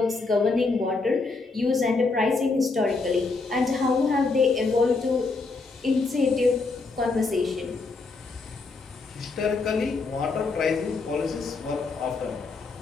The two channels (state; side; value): quieter; right; 3.9 dB